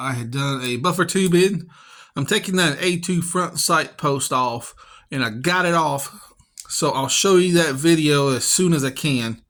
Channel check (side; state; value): both; identical; correlation 1.00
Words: had done a buffer tube in. I'm taking that A2 front sight post off, and I got it off. So I'll show you that video as soon as I can.